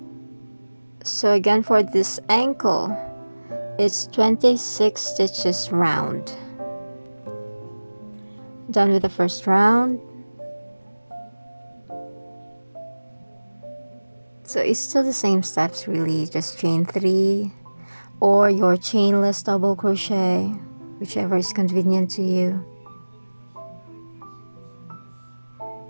So again, for this ankle, it's 26 stitches round. Done with the first round. So it's still the same steps really, just chain 3 or your chainless double crochet, whichever is convenient to you.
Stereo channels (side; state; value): both; inverted; correlation -1.00